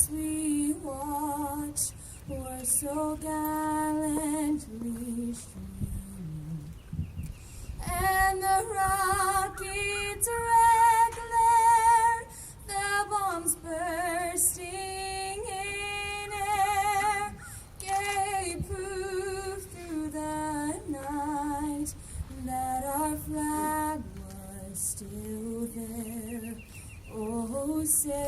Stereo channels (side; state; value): both; identical; correlation 1.00